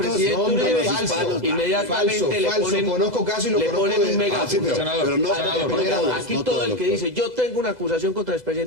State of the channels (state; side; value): late; right; 2.0 ms